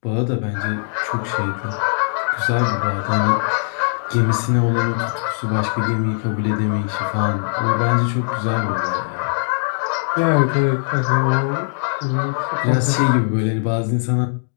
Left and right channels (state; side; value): silent; right; 65 dB below the other